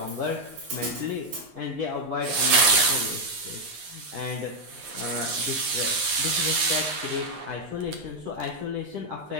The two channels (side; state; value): left; late; 10 ms